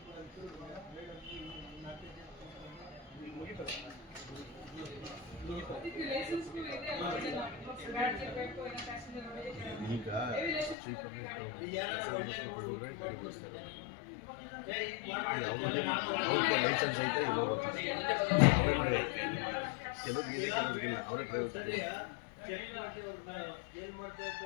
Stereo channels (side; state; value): right; drops out; at 10.8 s